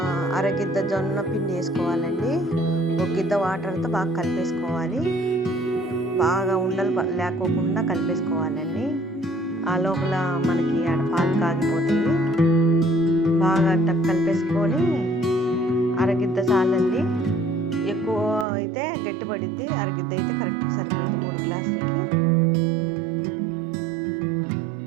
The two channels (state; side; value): drops out; left; at 18.4 s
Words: అరగిద్ద జొన్న పిండి వేసుకోవాలండి. ఒక గిద్ద వాటర్తో బాగా కలిపేసుకోవాలి. బాగా ఉండలు లేకోకుండా కలిపేసుకోవాలండి. ఆ లోపల మనకి ఆడ పాలు కాగిపోతాయి. బాగా కలిపేసుకొని అరగిద్ద చాలండి. ఎక్కువ అయితే గట్టిపడిద్ది, అరగిద్ద అయితే కరెక్ట్ సరిపోయింది 3 గ్లాసులకి.